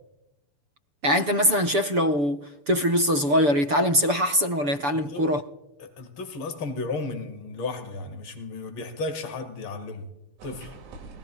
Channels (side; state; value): left; late; 6.9 ms